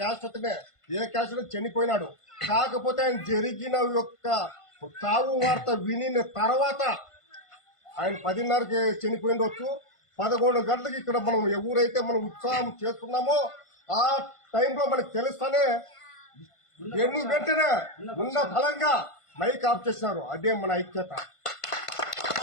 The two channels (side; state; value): right; late; 1.5 ms